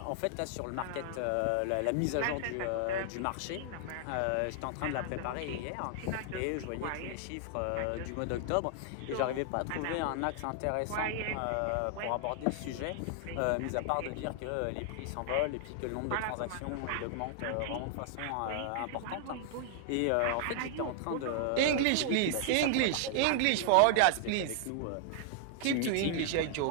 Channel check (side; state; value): both; different; correlation 0.00